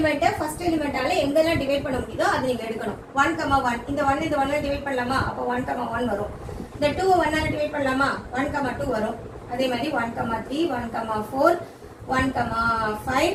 ஃபர்ஸ்ட் எலிமெண்டால எங்கெல்லாம் டிவைட் பண்ண முடியுதோ அது நீங்க எடுக்கணும். 1, 1 இந்த 1 இந்த 1 டிவைட் பண்ணலாமா, அப்போ 1, 1 வரும். இந்த 2 1 ஆல டிவைட் பண்ணலாமா, 1, 2 வரும். அதே மாதிரி 1, 3 1, 4 1, 5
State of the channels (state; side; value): identical; both; correlation 1.00